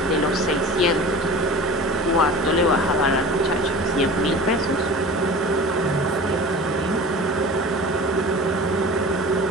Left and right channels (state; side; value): normal; both; correlation 0.38